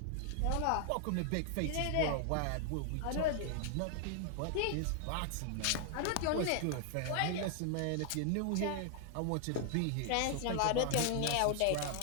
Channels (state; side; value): different; both; correlation 0.00